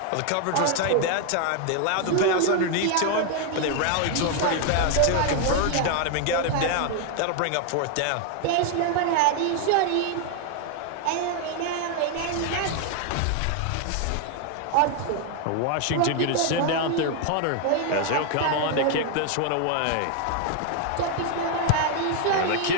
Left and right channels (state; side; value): different; both; correlation 0.01